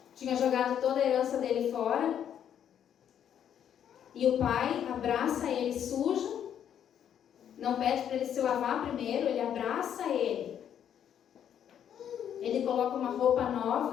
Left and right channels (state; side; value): quieter; right; 9.3 dB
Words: tinha jogado toda a herança dele fora, e o pai abraça ele sujo, não pede para ele se lavar primeiro, ele abraça ele. Ele coloca uma roupa